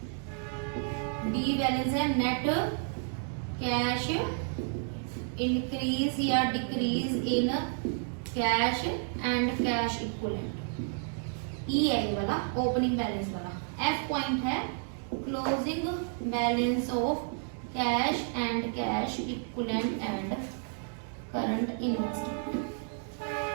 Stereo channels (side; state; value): left; silent; 57 dB below the other